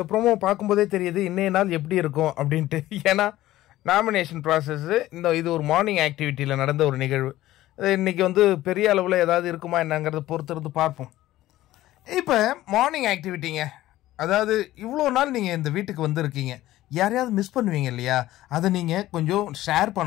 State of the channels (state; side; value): quieter; right; 15.4 dB